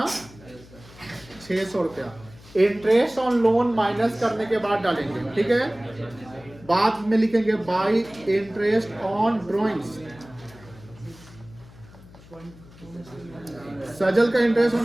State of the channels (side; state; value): left; noise; hum, 22 dB below the sound